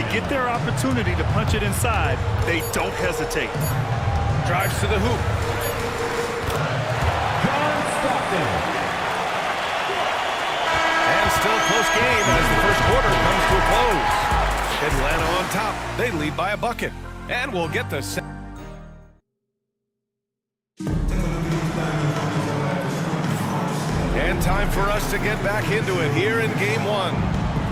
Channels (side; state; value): both; identical; correlation 1.00